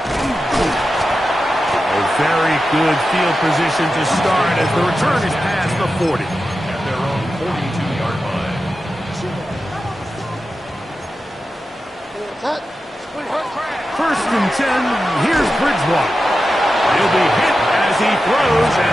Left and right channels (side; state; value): both; normal; correlation 0.91